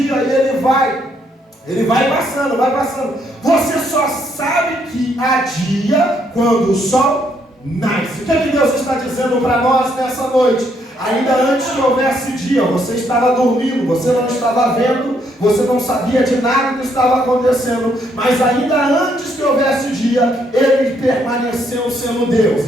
e ele vai passando, vai passando. Você só sabe que há dia quando o sol nasce. O que é que Deus está dizendo para nós nessa noite? Ainda antes que houvesse dia, você estava dormindo, você não estava vendo, você não sabia de nada que estava acontecendo, mas ainda antes que houvesse dia, Ele permaneceu sendo Deus,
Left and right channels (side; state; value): both; normal; correlation 0.72